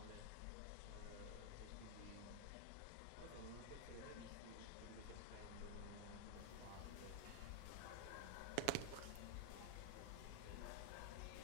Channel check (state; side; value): different; both; correlation 0.00